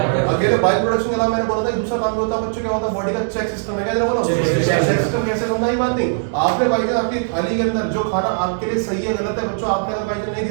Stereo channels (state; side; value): silent; left; digital silence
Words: अकेले बाइल प्रोडक्शन के अलावा मैंने बोला था दूसरा काम भी होता है बच्चों, क्या होता है, बॉडी का चेक सिस्टम है, क्या जरा बोलो, चेक सिस्टम कैसे समझा ही बात नहीं, आपने भाई आपकी थाली के अंदर जो खाना आपके लिए सही है गलत है बच्चों, आपने अगर भाई नहीं